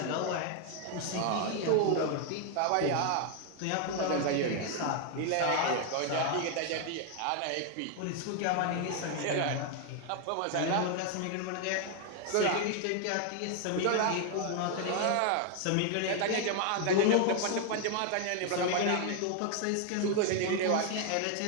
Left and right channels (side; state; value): both; different; correlation 0.00